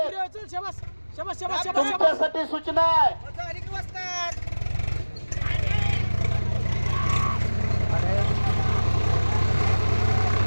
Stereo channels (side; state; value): both; inverted; correlation -1.00